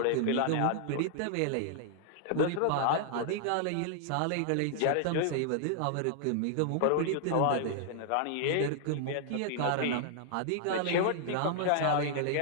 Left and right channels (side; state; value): both; different; correlation -0.01